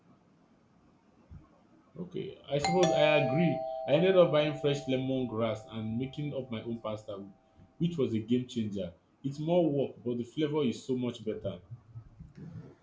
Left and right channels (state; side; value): identical; both; correlation 1.00